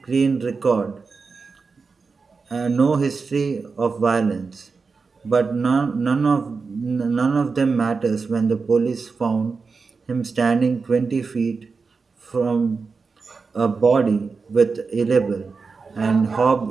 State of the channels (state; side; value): quieter; left; 4.7 dB